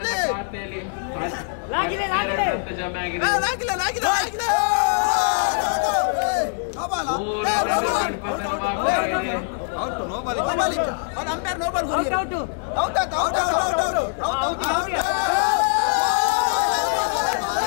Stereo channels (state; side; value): silent; right; digital silence